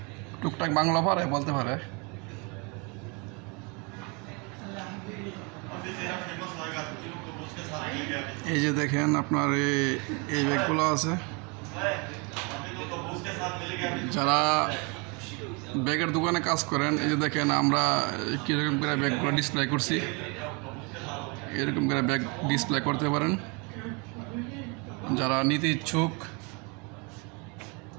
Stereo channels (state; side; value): quieter; left; 31.1 dB